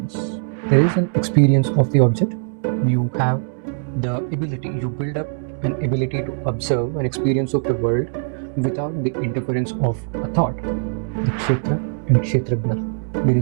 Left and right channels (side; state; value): left; silent; digital silence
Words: There is an experience of the object. You have the ability, you build up an ability to observe an experience of the world without the interference of a thought. The kshetra and kshetragna. There